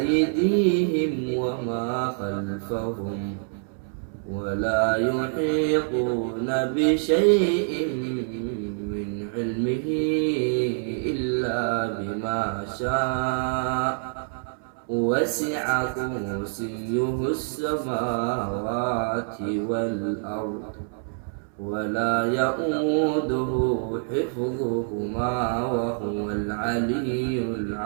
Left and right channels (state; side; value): silent; left; 61 dB below the other